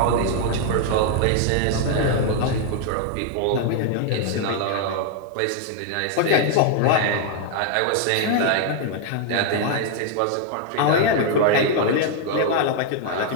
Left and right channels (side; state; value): both; different; correlation 0.00